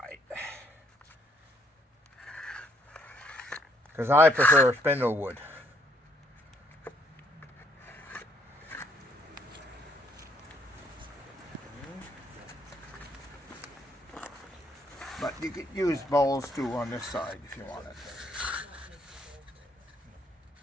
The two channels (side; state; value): both; normal; correlation 0.67